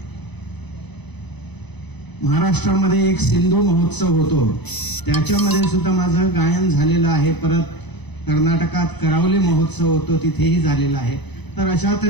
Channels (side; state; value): right; late; 0.99 ms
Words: महाराष्ट्रामध्ये एक सिंधू महोत्सव होतो, त्याच्यामध्ये सुद्धा माझं गायन झालेलं आहे. परत कर्नाटकात करावली महोत्सव होतो, तिथेही झालेला आहे. तर अशा